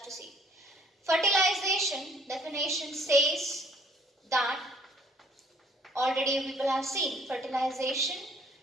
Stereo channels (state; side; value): normal; both; correlation 0.60